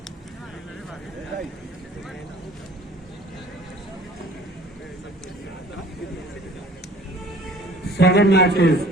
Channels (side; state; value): both; normal; correlation 0.50